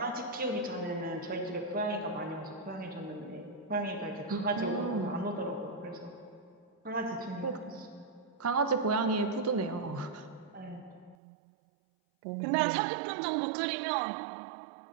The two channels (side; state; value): left; drops out; at 11.2 s